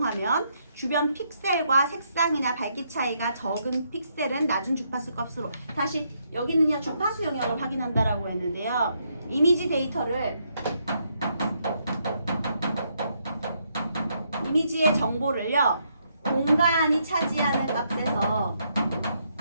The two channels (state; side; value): inverted; both; correlation -0.76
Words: 주변 픽셀과 색상이나 밝기 차이가 적은 픽셀은 낮은 주파수 값으로, 다시 여기는요 주파수 영역을 확인한다라고 했는데요. 이미지 데이터를 이미지의 정보를요 공간이 차지하는 값에서